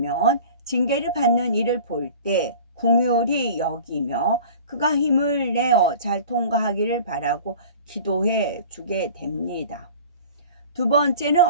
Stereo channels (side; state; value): both; inverted; correlation -0.41